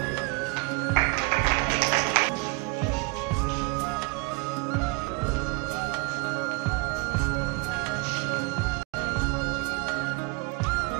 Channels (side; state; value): left; quieter; 28.2 dB